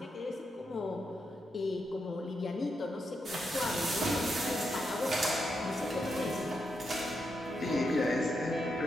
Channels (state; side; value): normal; both; correlation 0.84